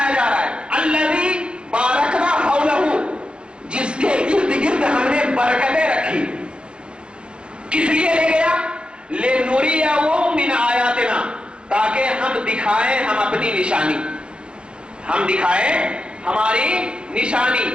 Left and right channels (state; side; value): late; left; 0.055 ms